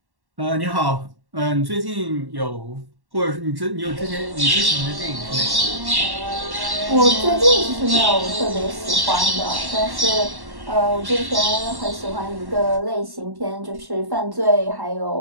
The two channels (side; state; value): left; late; 1.1 ms